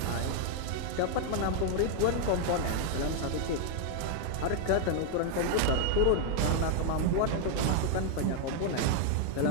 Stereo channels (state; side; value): different; both; correlation 0.00